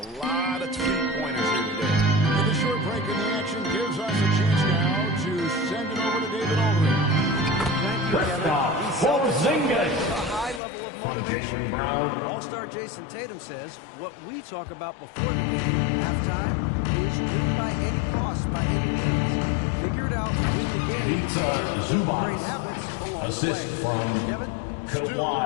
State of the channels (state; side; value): drops out; right; at 10.6 s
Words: lot of three-pointers here today. And the short break in the action gives us a chance now to send it over to David Aldridge. Thank you, Kevin. Porzingis. A high level of From motivation. Jaylen Brown. All-star Jason Tatum says what we talk about before the game, halftime, is win by any cost, by any means. Figure it out, win the game. Pizza Zubac. Great habits along Assist the way. from Kevin?